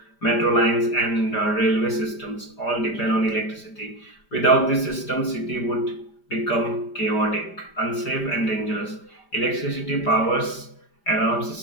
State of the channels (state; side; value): late; right; 5.0 ms